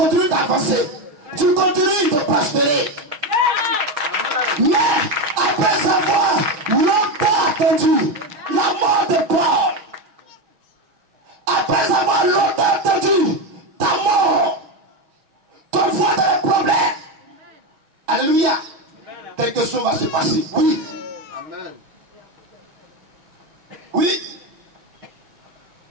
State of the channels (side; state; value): left; late; 6.4 ms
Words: d'avancer, tu continues de prospérer. Mais après avoir longtemps attendu la mort de Paul, après avoir longtemps attendu ta mort, ton foi dans les problèmes, alléluia, quelque chose va se passer. Oui. Amen. Oui.